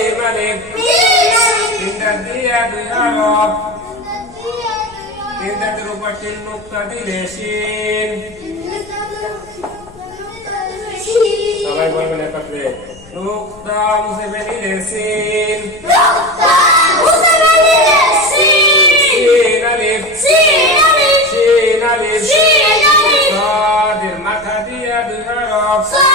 আলিফ, তিন দাঁত দিয়া দুই হরফ, তিন দাঁতের উপর তিন নুক্তা দিলে শিন। সবাই বলবেন একত্রে, নুক্তা মুছে বেরিলে সিন, সিন আলিফ, সিন আলিফ, সাদের মাথা দিয়া দুই হরফ,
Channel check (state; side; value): noise; left; rumble, 26 dB below the sound